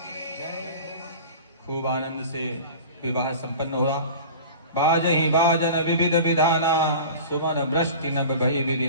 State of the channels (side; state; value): both; inverted; correlation -0.38